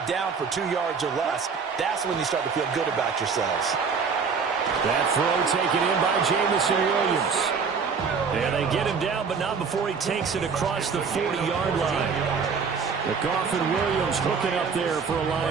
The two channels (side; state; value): left; quieter; 5.6 dB